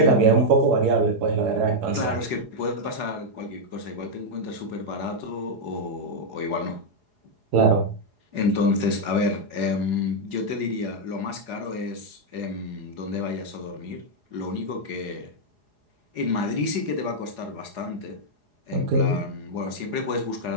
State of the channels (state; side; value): late; left; 4.8 ms